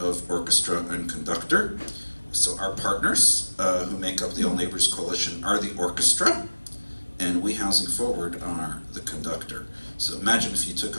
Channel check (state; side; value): inverted; both; correlation -1.00